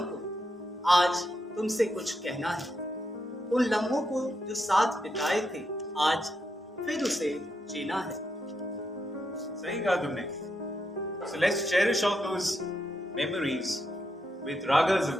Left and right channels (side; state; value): both; normal; correlation 0.82